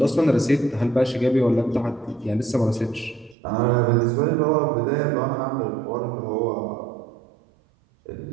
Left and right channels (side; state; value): left; drops out; at 3.4 s